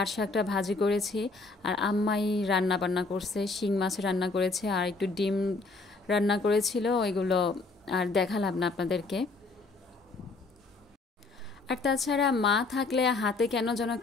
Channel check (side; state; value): right; quieter; 3.7 dB